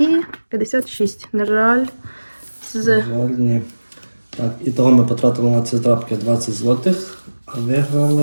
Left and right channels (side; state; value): both; inverted; correlation -1.00